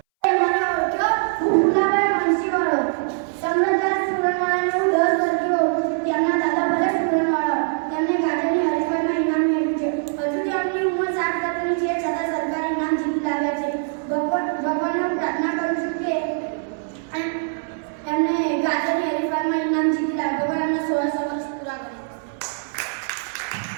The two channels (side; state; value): left; silent; 61 dB below the other